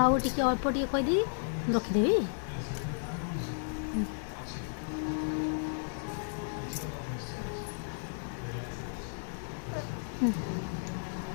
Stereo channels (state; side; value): silent; right; digital silence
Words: ଆଉ ଟିକେ ଅଳ୍ପ ଟିକେ କହିଦେବି, ରଖିଦେବି।